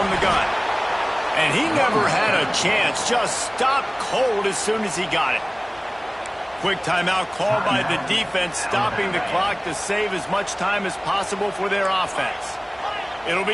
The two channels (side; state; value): both; identical; correlation 1.00